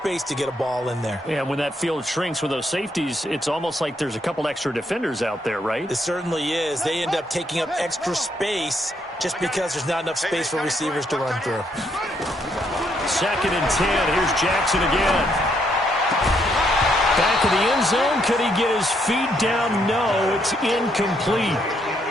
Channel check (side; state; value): both; normal; correlation 0.74